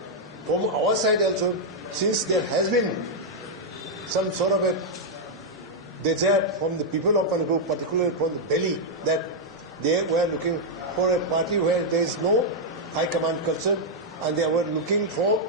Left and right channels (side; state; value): both; normal; correlation -0.04